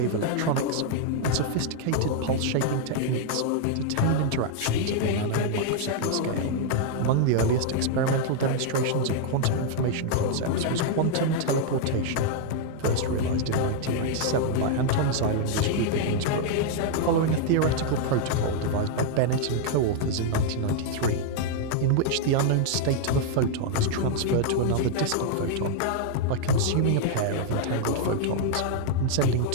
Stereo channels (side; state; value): both; different; correlation -0.01